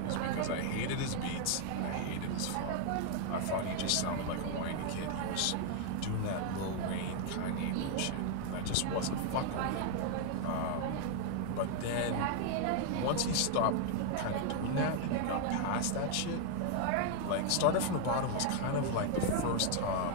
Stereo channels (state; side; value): different; both; correlation 0.00